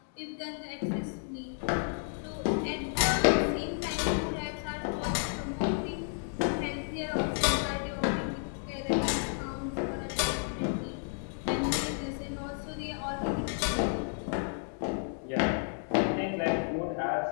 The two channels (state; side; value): silent; right; 57 dB below the other